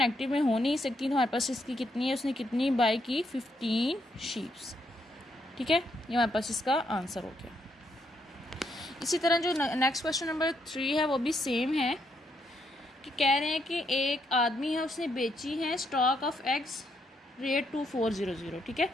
में हो नहीं सकती, तो हमारे पास इसकी कितनी है, उसने कितनी बाई की 15 शीप्स। ठीक है, ये हमारे पास इसका आंसर हो गया। इसी तरह जो नेक्स्ट क्वेश्चन नंबर 3 है वो भी सेम है कि कह रहे हैं कि एक आदमी है, उसने बेची है स्टॉक ऑफ एग्स रेट 2400। ठीक है,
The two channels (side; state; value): both; normal; correlation 0.76